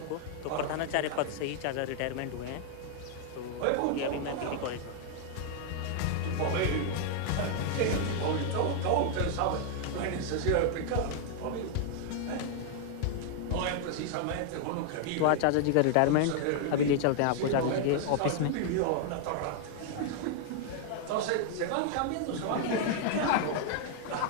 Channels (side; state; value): both; different; correlation 0.00